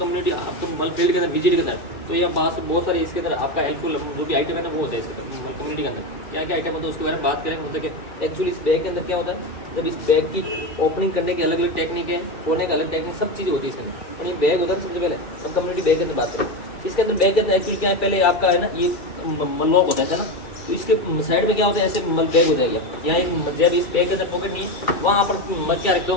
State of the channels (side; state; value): right; late; 2.4 ms